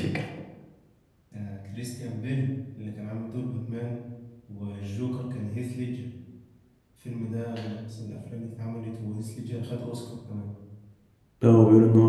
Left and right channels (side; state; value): both; identical; correlation 1.00